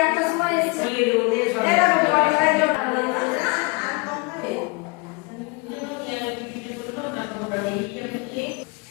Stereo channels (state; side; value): quieter; right; 29.7 dB